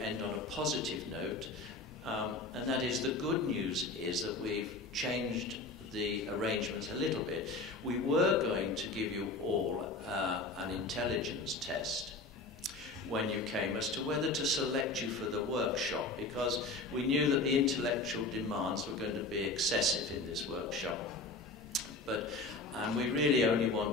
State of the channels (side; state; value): right; quieter; 3.2 dB